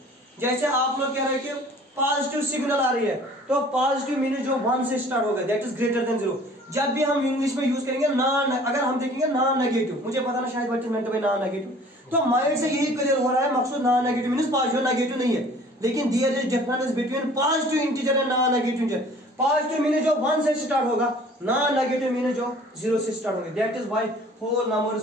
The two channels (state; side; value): normal; both; correlation 0.50